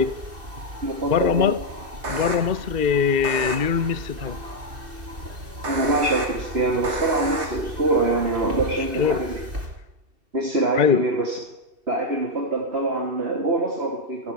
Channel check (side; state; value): left; late; 2.7 ms